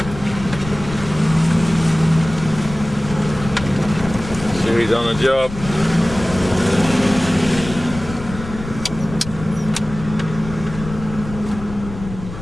He's on the job.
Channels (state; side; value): noise; left; rumble, 11 dB below the sound